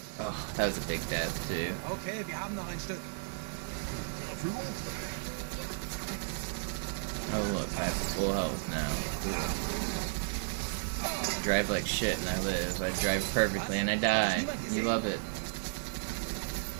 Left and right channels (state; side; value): silent; left; digital silence